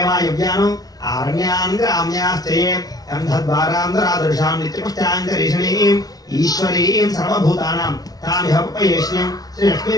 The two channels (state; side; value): late; right; 0.18 ms